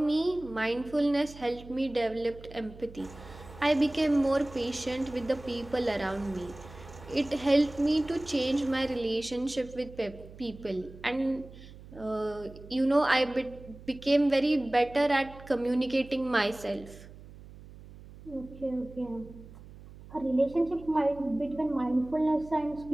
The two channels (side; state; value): right; noise; hum, 18 dB below the sound